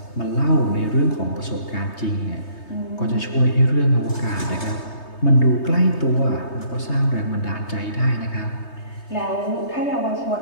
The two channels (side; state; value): right; late; 3.3 ms